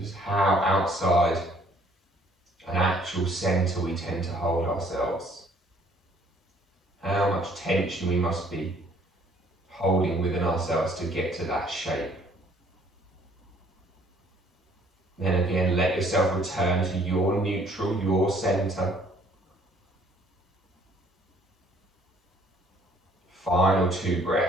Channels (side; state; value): both; normal; correlation 0.60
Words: how outside an actual centre we tend to hold ourselves. How much tension we must be holding within ourselves to get to that shape. Then again, let yourself return to your neutral, your centre. Final 2